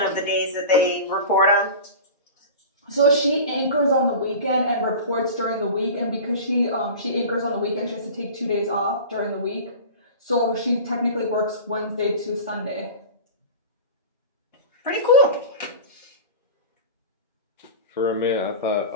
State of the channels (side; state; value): both; inverted; correlation -0.33